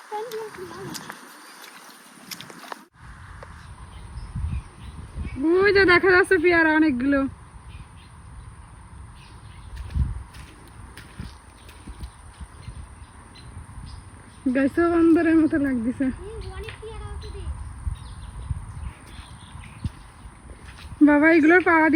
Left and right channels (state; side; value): identical; both; correlation 1.00